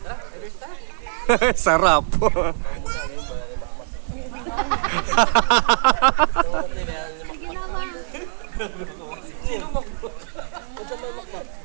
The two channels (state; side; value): silent; left; 57 dB below the other